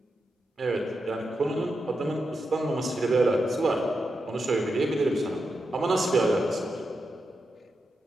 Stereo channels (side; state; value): both; normal; correlation 0.87